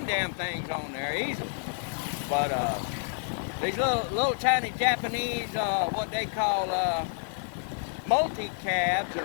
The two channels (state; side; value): silent; right; 59 dB below the other